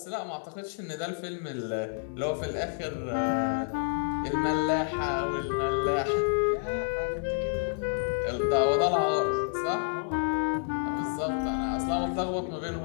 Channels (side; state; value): right; silent; 58 dB below the other